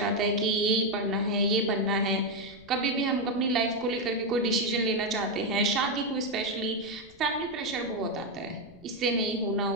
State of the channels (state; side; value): noise; left; rumble, 25 dB below the sound